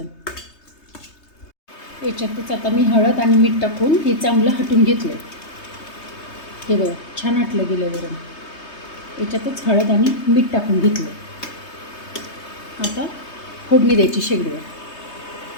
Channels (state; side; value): late; right; 3.2 ms